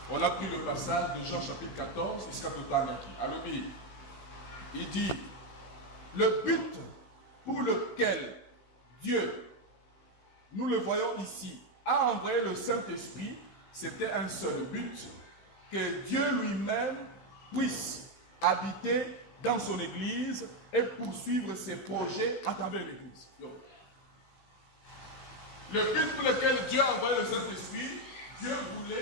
On a pris le passage de Jean chapitre 14 jusqu'à Totangaki. Alors, il dit, le but pour lequel Dieu, nous le voyons ici, a envoyé le Saint-Esprit, c'était un seul but, que Dieu lui-même puisse habiter dans son Église et poursuivre ses projets à travers l'Église. Le but pour lequel Dieu a envoyé le Saint-Esprit, Dieu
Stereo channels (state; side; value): late; right; 16 ms